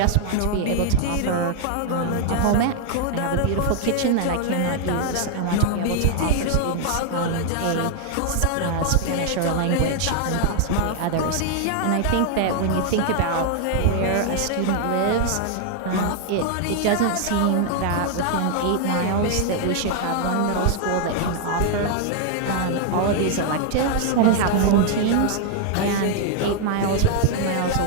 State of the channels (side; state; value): both; different; correlation 0.00